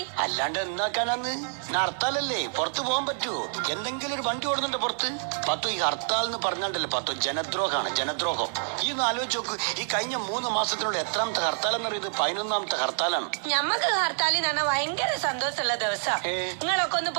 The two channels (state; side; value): silent; left; digital silence